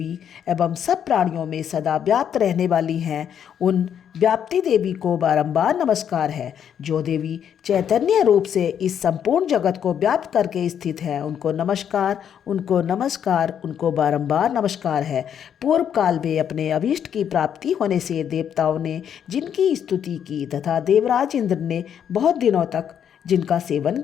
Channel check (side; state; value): right; quieter; 8.8 dB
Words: एवं सब प्राणियों में सदा व्याप्त रहने वाली हैं, उन व्याप्ति देवी को बारंबार नमस्कार है। जो देवी चैतन्य रूप से इस संपूर्ण जगत को व्याप्त करके स्थित है, उनको नमस्कार, उनको नमस्कार, उनको बारंबार नमस्कार है। पूर्व काल में अपने अभीष्ट की प्राप्ति होने से देवताओं ने जिनकी स्तुति की तथा देवराज इंद्र ने बहुत दिनों तक जिनका सेवन